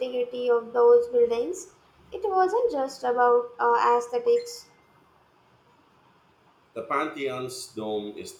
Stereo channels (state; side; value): identical; both; correlation 1.00